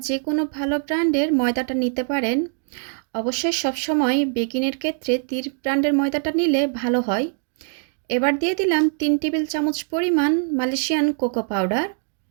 যে কোনো ভালো ব্র্যান্ডের ময়দাটা নিতে পারেন। অবশ্যই সবসময় বেকিংয়ের ক্ষেত্রে তীর ব্র্যান্ডের ময়দাটা নিলে ভালো হয়। এবার দিয়ে দিলাম 3 টেবিল চামচ পরিমাণ মালয়েশিয়ান কোকো পাউডার,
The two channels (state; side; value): silent; left; 62 dB below the other